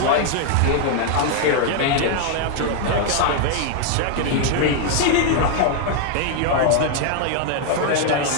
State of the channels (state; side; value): different; both; correlation 0.00